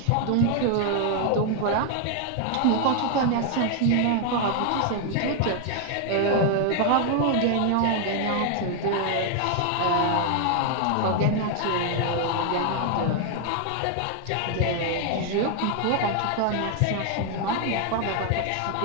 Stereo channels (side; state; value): both; different; correlation 0.00